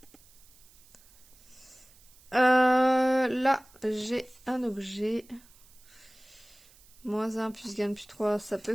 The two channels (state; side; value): noise; right; hiss, 26 dB below the sound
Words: Là, j'ai un objet. Moins 1 plus gagne plus 3, ça peut